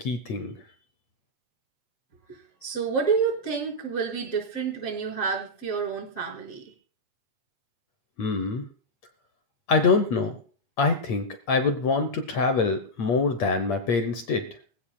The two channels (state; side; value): late; right; 8.7 ms